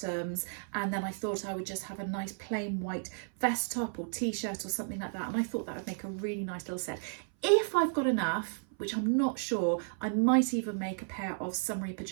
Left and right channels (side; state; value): left; silent; 56 dB below the other